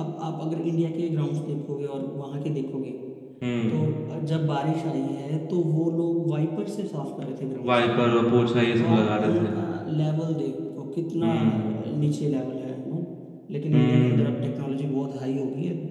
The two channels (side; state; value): both; identical; correlation 1.00